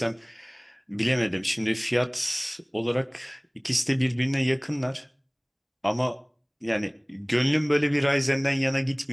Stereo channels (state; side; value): identical; both; correlation 1.00